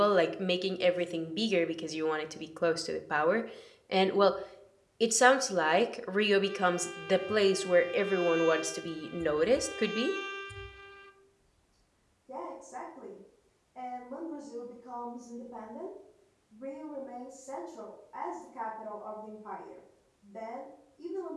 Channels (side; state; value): both; identical; correlation 1.00